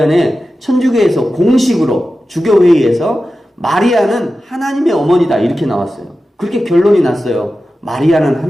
천주교에서 공식으로 주교회의에서 마리아는 하나님의 어머니다, 이렇게 나왔어요. 그렇게 결론이 났어요. 마리아는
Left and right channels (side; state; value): both; normal; correlation 0.93